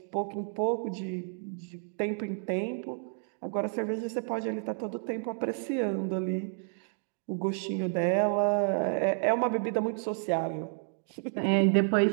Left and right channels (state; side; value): silent; left; 56 dB below the other